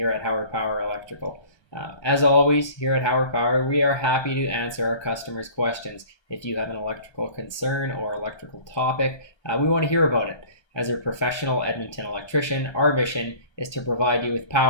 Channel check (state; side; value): late; right; 1.2 ms